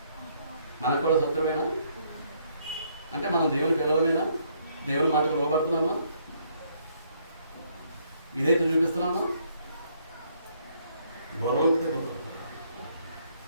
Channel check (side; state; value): both; inverted; correlation -0.69